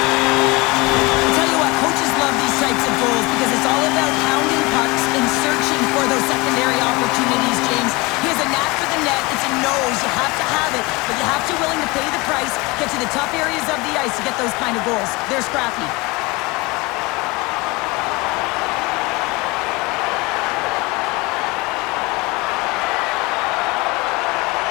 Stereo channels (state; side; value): quieter; right; 24.5 dB